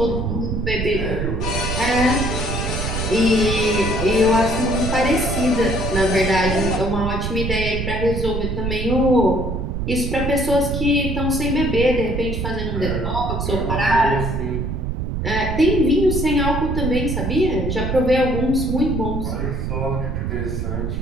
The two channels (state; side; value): noise; right; rumble, 2 dB below the sound